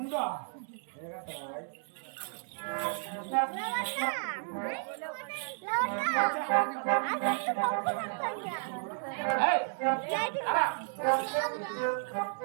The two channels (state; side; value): silent; left; 56 dB below the other